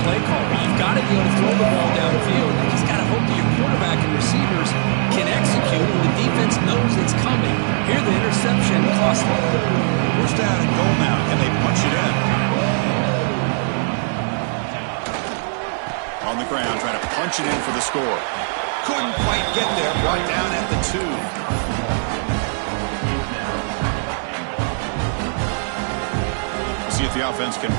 play caller. You've got to be able to throw the ball downfield. You just got to hope that your quarterback and receivers can execute and the defense knows it's coming. Here the interception cost them. First down and goal now, and they punch it in. On the ground, trying to punch it in for the score. Couldn't quite get there, brought down at the 2. See if the offense can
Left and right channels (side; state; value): left; silent; 66 dB below the other